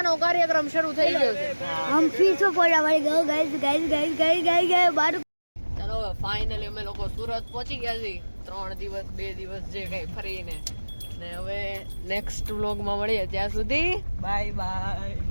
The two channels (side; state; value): both; inverted; correlation -1.00